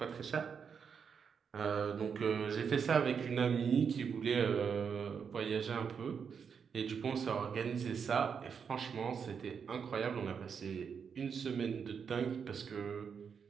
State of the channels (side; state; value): left; quieter; 6.6 dB